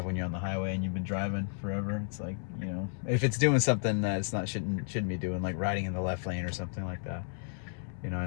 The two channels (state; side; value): silent; right; 56 dB below the other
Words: when you're on the highway and you've been driving forever. It's like, you know, if it's doing something that it's not shouldn't be doing, like riding in the left lane or something like that, you know,